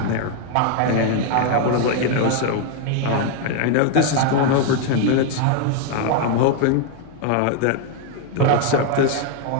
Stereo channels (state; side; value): different; both; correlation 0.00